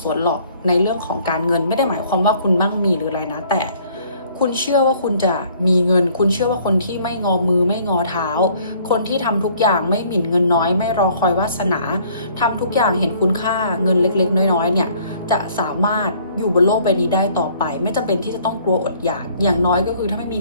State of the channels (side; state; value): both; inverted; correlation -0.59